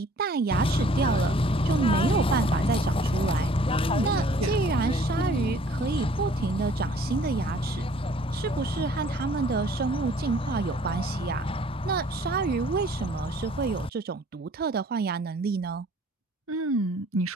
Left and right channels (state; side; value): normal; both; correlation 0.55